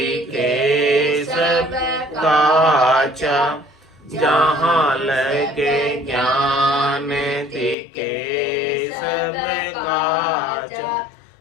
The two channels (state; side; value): drops out; right; at 7.8 s